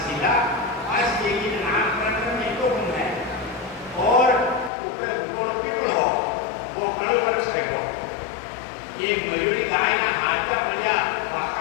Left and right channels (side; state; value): right; drops out; at 4.7 s